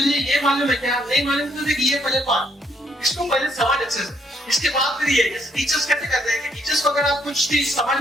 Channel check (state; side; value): normal; both; correlation 0.70